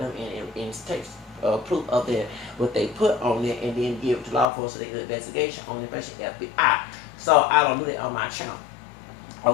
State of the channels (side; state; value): right; drops out; at 4.5 s